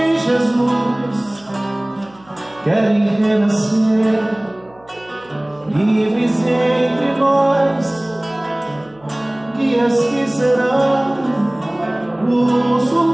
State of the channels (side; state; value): right; noise; hum, 29 dB below the sound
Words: Jesus, querem renascer, livres entre nós, guias que serão